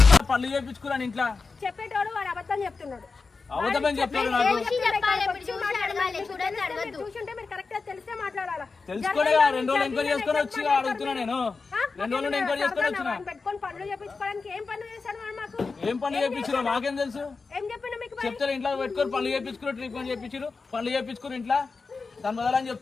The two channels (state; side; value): quieter; right; 4.4 dB